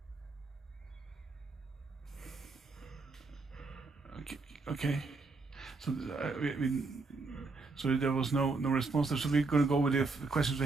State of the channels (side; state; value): left; quieter; 3.8 dB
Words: Okay. So so there was no response there. So we're going to go with the questions we